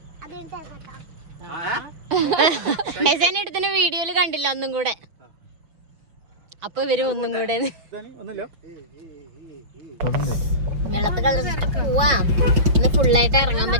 എടുത്തിന് വീഡിയോയിൽ കണ്ടില്ല ഒന്നും കൂടെ. അപ്പൊ ഇവര് ഒന്നും കൂടെ ഇന്ന് ഫുള്ളായിട്ട് ഇറങ്ങാൻ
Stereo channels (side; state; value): left; late; 6.1 ms